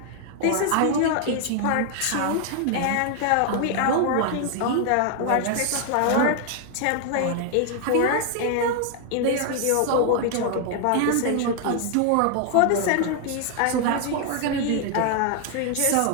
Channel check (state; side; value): different; both; correlation 0.00